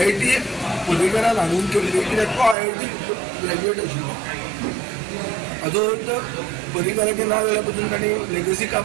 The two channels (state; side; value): drops out; left; at 2.6 s